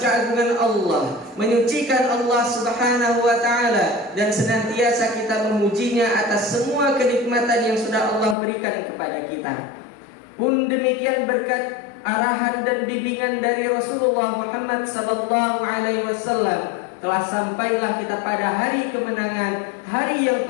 keagungan Allah, menyucikan Allah Subhanahu wa taala, dan senantiasa kita memujinya atas semua kenikmatan yang sudah Allah berikan kepada kita. Pun demikian berkat arahan dan bimbingan dari Rasulullah Muhammad sallallahu alaihi wasallam, telah sampailah kita pada hari kemenangan, hari yang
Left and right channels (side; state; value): right; drops out; at 8.3 s